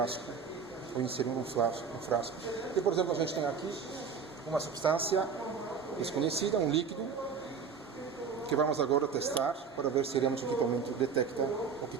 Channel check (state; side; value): quieter; left; 5.9 dB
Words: ou inserir um frasco. E, por exemplo, a gente tem aqui uma substância desconhecida, um líquido, que vamos agora testar para ver se realmente o equipamento detecta o que